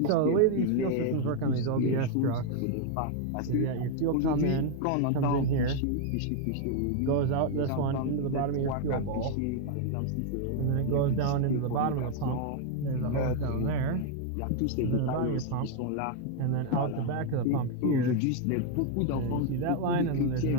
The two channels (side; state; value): both; different; correlation 0.00